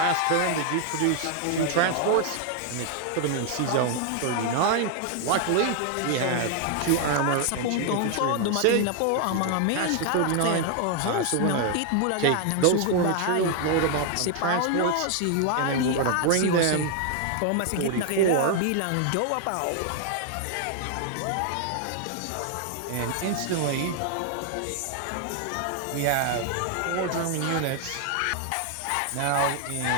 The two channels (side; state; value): both; different; correlation 0.00